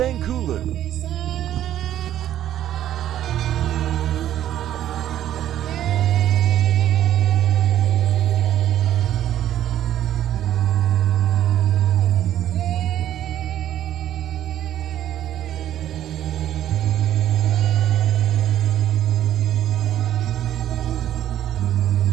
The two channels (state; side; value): quieter; left; 11.8 dB